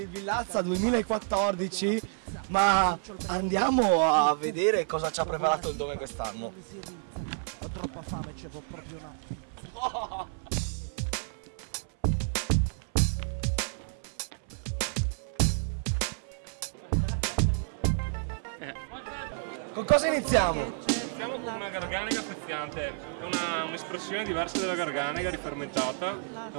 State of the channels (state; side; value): silent; left; 56 dB below the other